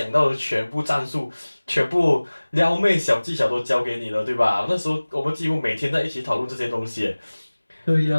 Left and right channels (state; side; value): inverted; both; correlation -1.00